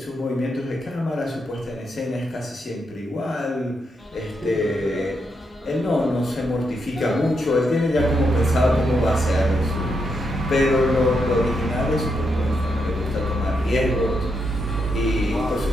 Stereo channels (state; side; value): normal; both; correlation 0.82